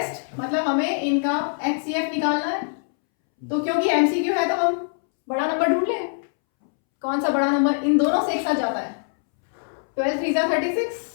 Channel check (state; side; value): silent; right; 63 dB below the other